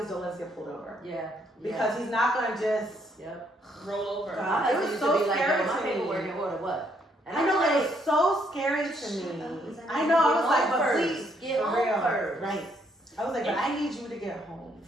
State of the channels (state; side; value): normal; both; correlation 0.71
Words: don't let us get pulled over. Yeah. Because he's not gonna just roll over. God, it was so scary my to me. paperwork in order, what? And I know, I'm it was so scary to me. I know, I was like, but please, get for home real. first. Right. I was like, but I need you to get home